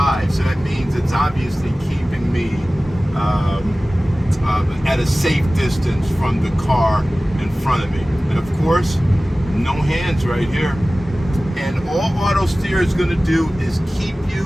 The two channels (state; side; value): normal; both; correlation 0.97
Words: So that means it's obviously keeping me at a safe distance from the car in front of me. And of course, no hands right here. And all Autosteer is going to do is keep